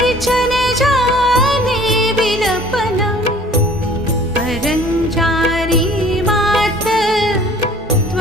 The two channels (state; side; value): normal; both; correlation 0.51